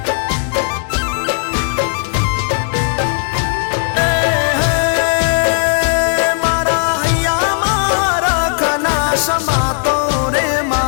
મારા હૈયા મારા ખના સમાતો રે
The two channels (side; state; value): right; silent; 69 dB below the other